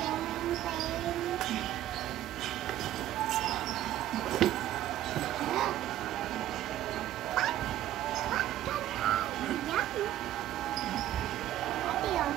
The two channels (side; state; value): left; quieter; 13.1 dB